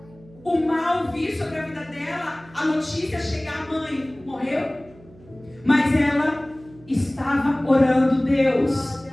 o mal vir sobre a vida dela, a notícia chegar: a mãe morreu. Mas ela estava orando: Deus,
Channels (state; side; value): noise; right; hum, 24 dB below the sound